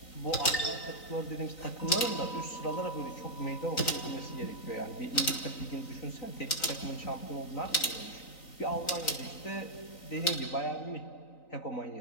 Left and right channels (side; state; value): right; late; 3.9 ms